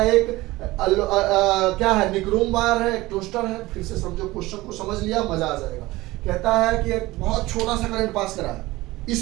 एक क्या है, निक्रोम वायर है, एक टोस्टर है। फिर से समझो, क्वेश्चन को समझ लिया, मजा आ जाएगा। कहता है कि एक बहुत छोटा सा करंट पास करा है,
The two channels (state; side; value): quieter; left; 19.3 dB